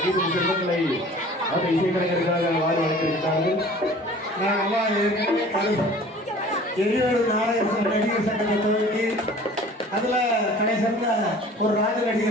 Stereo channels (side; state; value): both; normal; correlation 0.46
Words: செல்வங்களை அந்த இசைக்கலைஞர்களாக வாழ் வளர்த்திருக்கிறார்கள். எரியோடு நாடக நடிகர் சங்கத்தை துவங்கி அதில் கடை சேர்ந்த ஒரு ராஜ